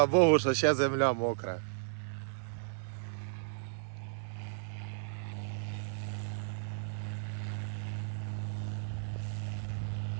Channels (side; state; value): left; silent; digital silence